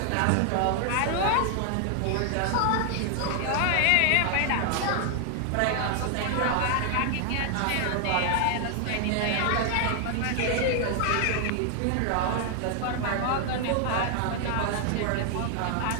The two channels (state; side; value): different; both; correlation 0.00